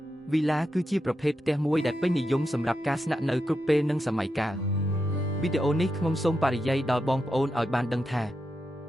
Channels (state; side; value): normal; both; correlation 0.87